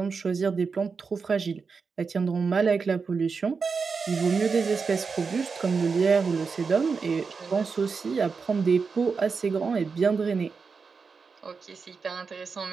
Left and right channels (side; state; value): left; quieter; 5.1 dB